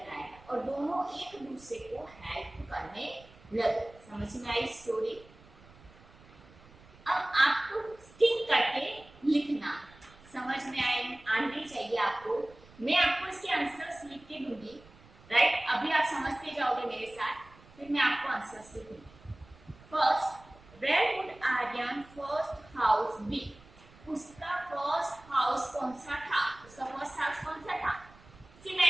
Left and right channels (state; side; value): noise; right; rumble, 23 dB below the sound